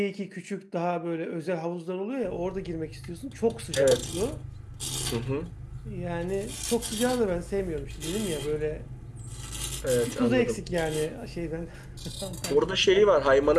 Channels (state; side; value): identical; both; correlation 1.00